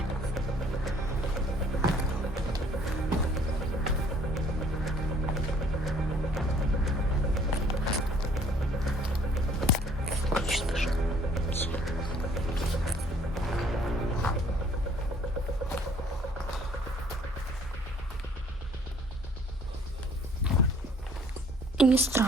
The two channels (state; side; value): normal; both; correlation 0.58